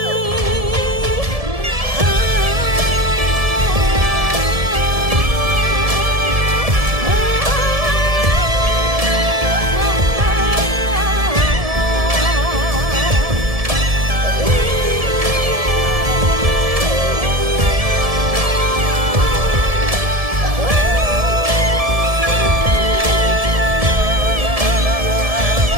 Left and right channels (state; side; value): late; left; 1.7 ms